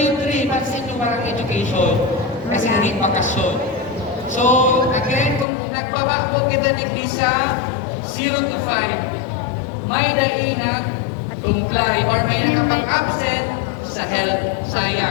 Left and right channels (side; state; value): right; drops out; at 5.5 s